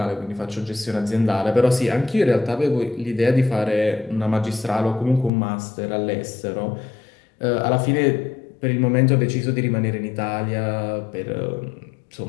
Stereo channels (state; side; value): drops out; right; at 5.3 s